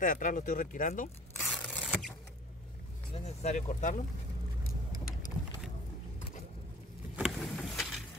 de atrás lo estoy retirando. No es necesario cortarlo.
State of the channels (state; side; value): normal; both; correlation 0.46